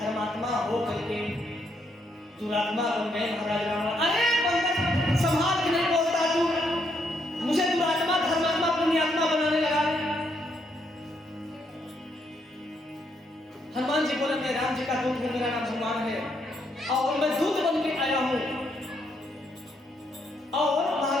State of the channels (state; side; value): normal; both; correlation 0.75